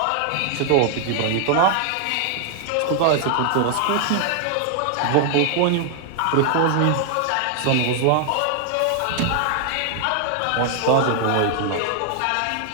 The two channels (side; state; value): both; different; correlation 0.00